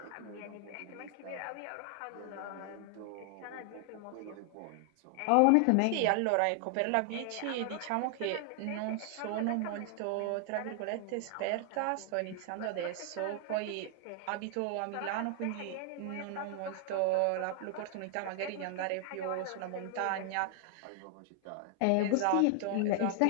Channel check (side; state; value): both; different; correlation 0.00